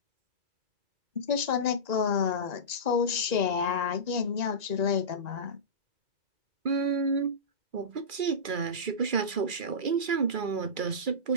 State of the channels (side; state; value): left; late; 2.3 ms